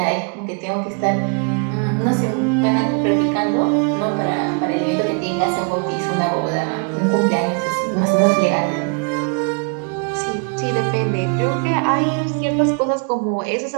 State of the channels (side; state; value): left; quieter; 37.5 dB